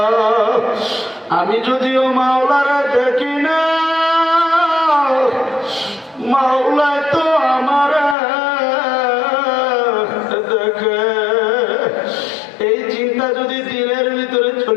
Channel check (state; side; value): drops out; right; at 8.2 s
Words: আমি যদিও মাওলারে দেখি না, মাওলায় তো আমার দেখে। এই চিন্তা যদি দিলের ভিতরে